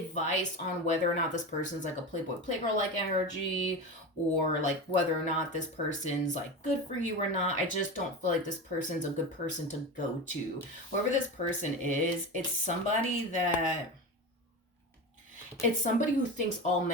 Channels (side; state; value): both; normal; correlation 0.24